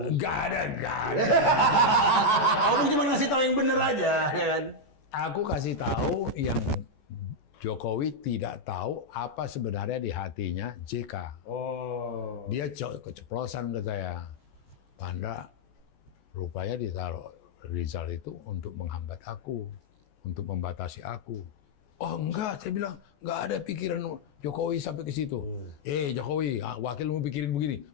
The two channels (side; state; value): right; late; 14 ms